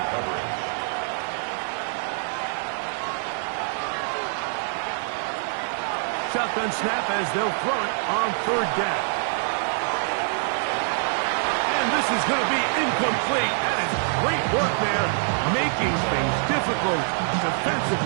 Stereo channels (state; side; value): silent; left; 61 dB below the other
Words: coverage. Shotgun snap as they'll throw it on 3rd down. And this is going to be incomplete. That is great work there, making things difficult